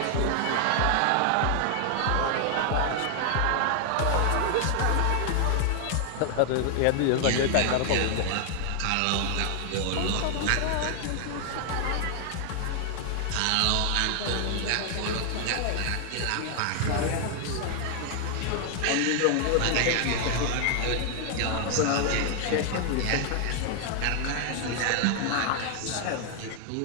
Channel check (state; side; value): different; both; correlation 0.00